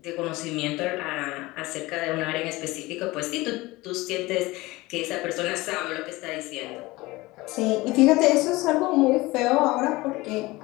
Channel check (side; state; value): right; quieter; 20.7 dB